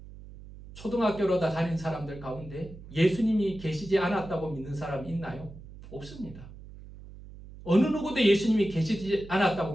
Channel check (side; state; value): right; noise; hum, 16 dB below the sound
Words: 초등학교로 다 다닌 사람들 가운데 예수님이 계시지 않았다고 믿는 사람이 있나요? 없습니다. 어느 누구도 예수님이 계시지 않았다고